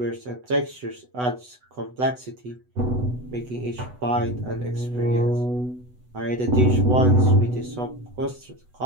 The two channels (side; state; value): left; late; 8.0 ms